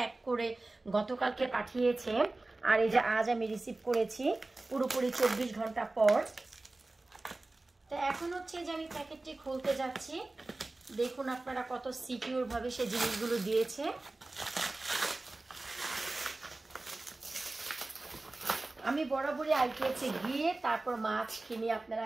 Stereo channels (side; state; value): left; quieter; 3.0 dB